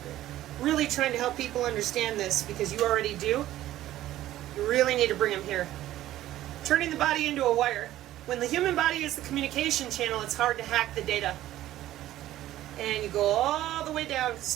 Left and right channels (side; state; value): left; quieter; 14.1 dB